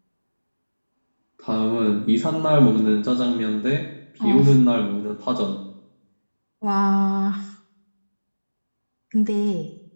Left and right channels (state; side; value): inverted; both; correlation -1.00